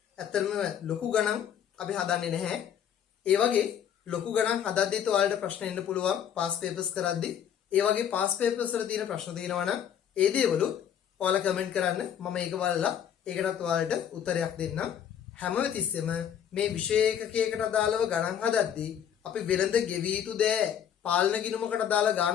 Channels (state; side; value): quieter; right; 9.0 dB